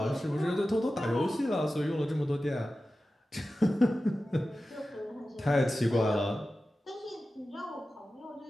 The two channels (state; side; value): normal; both; correlation 0.94